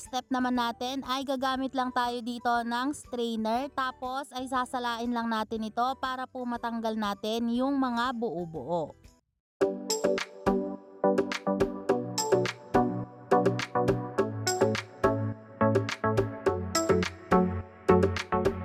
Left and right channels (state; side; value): identical; both; correlation 1.00